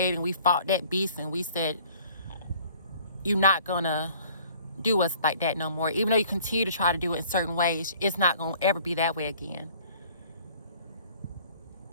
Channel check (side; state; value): both; inverted; correlation -0.54